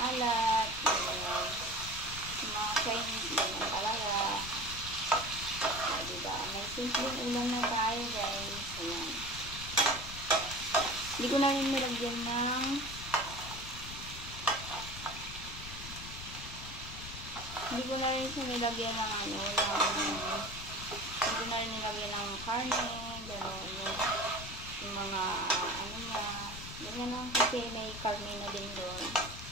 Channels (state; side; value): noise; left; rumble, 11 dB below the sound